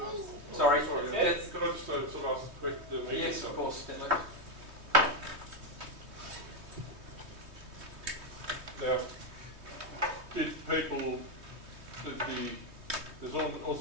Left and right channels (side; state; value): left; late; 3.2 ms